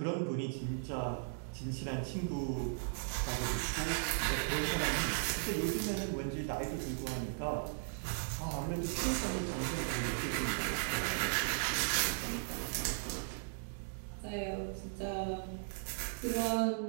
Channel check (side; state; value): left; silent; digital silence